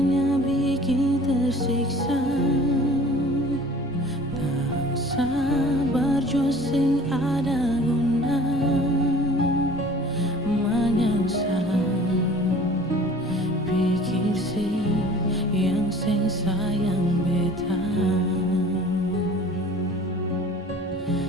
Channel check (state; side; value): normal; both; correlation 0.47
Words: bikin tersiksa, tak sabar jua sing ada guna menyangsa. Pikir sih yang sing sayang beta,